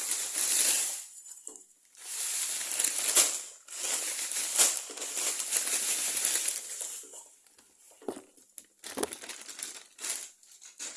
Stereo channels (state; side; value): identical; both; correlation 1.00